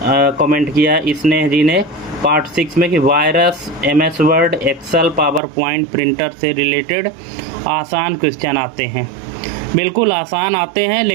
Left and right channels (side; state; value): left; drops out; at 5.4 s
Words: कमेंट किया स्नेह जी ने पार्ट 6 में कि virus, MS Word, Excel, PowerPoint, printer से रिलेटेड आसान क्वेश्चन आते हैं। बिल्कुल आसान आते हैं,